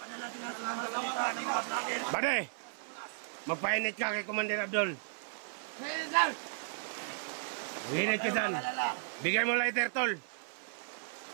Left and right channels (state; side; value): silent; left; 54 dB below the other